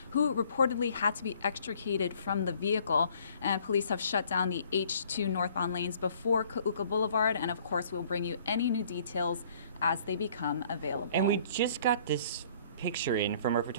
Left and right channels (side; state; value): both; inverted; correlation -0.59